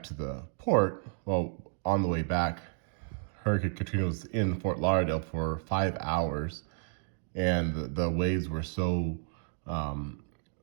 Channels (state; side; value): silent; left; 57 dB below the other